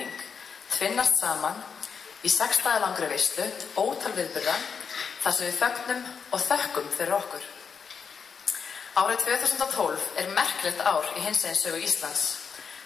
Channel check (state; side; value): quieter; right; 6.2 dB